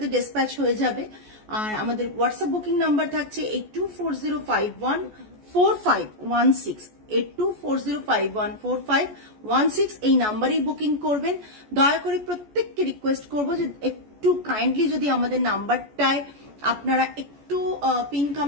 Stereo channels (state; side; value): late; left; 14 ms